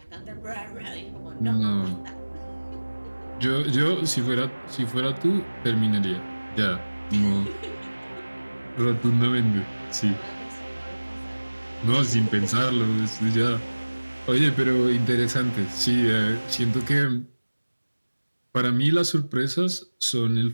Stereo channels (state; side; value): inverted; both; correlation -1.00